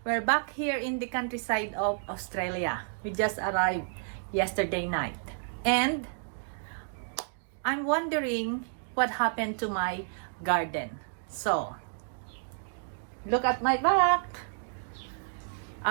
We're back here in the countryside of Australia. We just arrived yesterday night. And I'm wondering what happened to my garden. So, look at my back.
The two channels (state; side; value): silent; left; digital silence